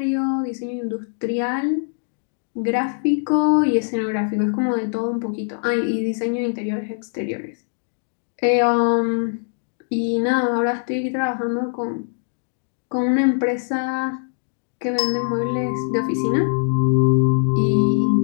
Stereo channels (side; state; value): right; silent; 64 dB below the other